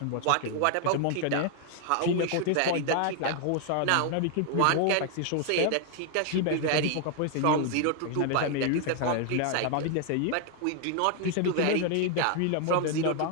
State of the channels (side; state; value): both; different; correlation 0.00